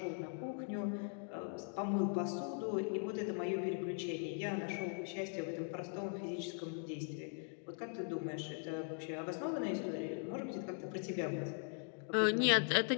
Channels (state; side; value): silent; right; 51 dB below the other